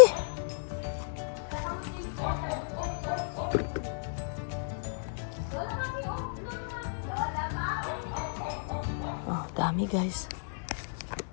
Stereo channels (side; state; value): right; silent; digital silence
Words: Oh, dami, guys.